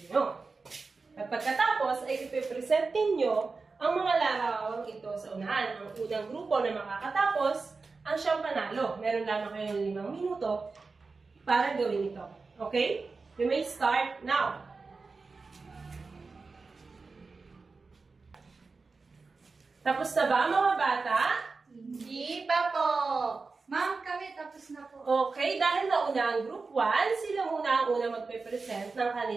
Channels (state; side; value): quieter; left; 4.2 dB